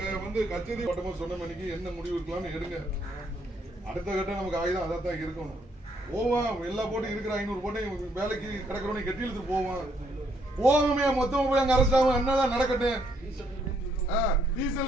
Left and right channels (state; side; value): normal; both; correlation 0.71